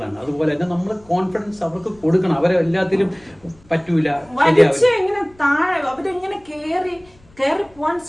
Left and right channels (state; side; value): noise; left; rumble, 29 dB below the sound